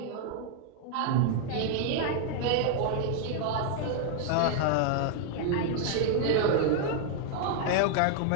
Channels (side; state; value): both; different; correlation 0.00